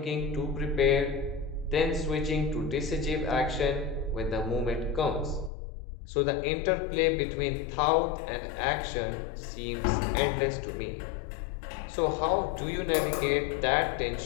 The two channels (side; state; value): right; drops out; at 5.5 s